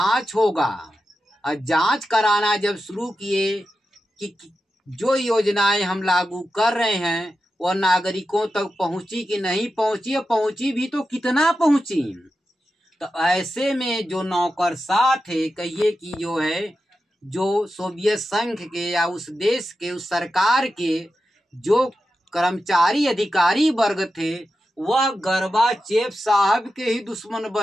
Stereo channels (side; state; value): both; normal; correlation 0.91